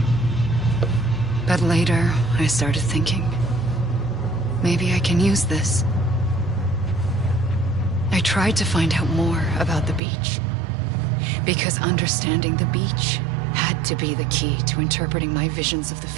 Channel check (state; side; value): drops out; left; at 10.0 s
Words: But later, I started thinking, maybe I can use this. I tried to find out more about the beach. Because understanding the beach had to be the key to interpreting my visions of the